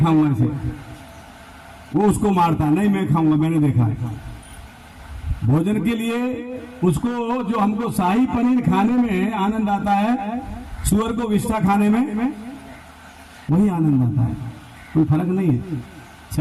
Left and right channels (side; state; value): both; identical; correlation 1.00